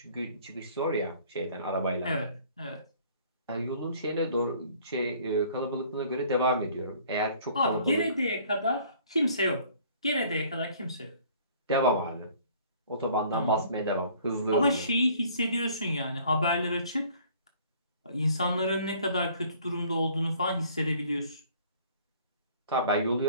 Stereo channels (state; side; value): inverted; both; correlation -0.56